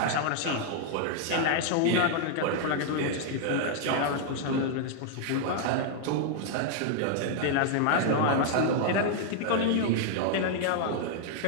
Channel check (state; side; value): different; both; correlation -0.01